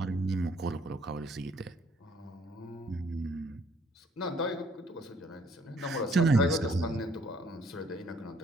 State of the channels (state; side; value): normal; both; correlation 0.63